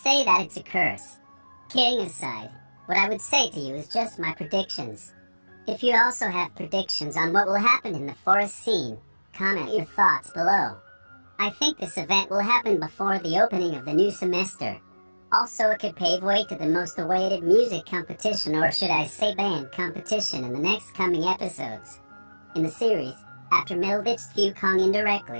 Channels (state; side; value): inverted; both; correlation -1.00